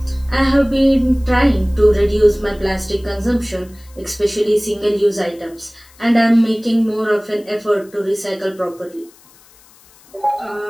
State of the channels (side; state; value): left; noise; hiss, 27 dB below the sound